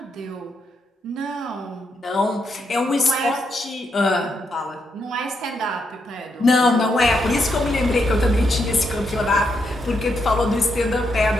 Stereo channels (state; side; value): normal; both; correlation 0.80